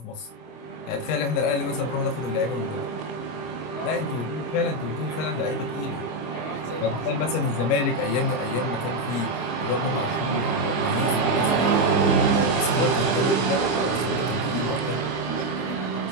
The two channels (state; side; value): late; right; 25 ms